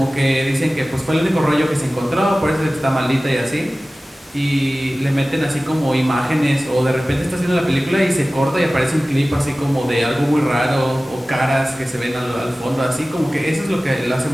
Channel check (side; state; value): both; normal; correlation 0.97